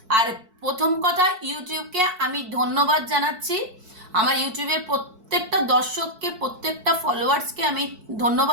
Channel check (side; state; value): left; late; 4.6 ms